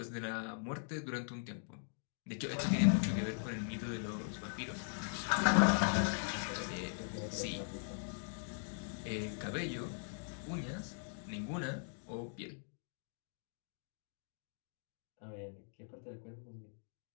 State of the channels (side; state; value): right; silent; digital silence